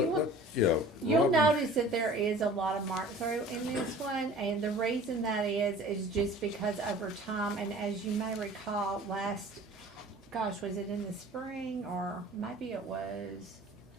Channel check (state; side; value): normal; both; correlation 0.46